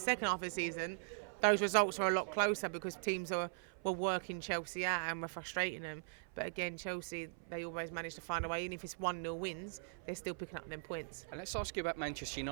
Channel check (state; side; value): silent; left; 51 dB below the other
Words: half of the season, those results are a lot closer because teams were working Chelsea out and were frustrating them. But again, Chelsea, they always manage to find a way. Even if it's 1-0 wins, they're still picking up them points. And let's ask you about Manchester